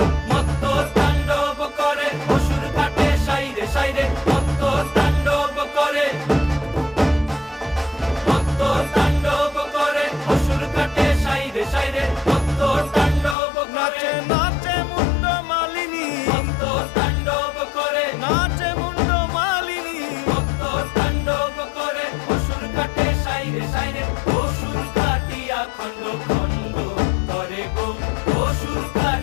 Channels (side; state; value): right; drops out; at 13.4 s